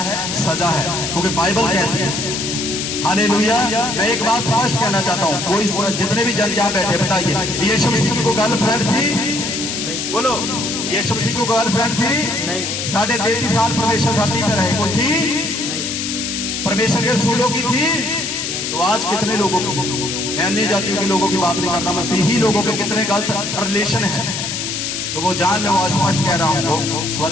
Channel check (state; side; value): noise; left; hiss, 3 dB below the sound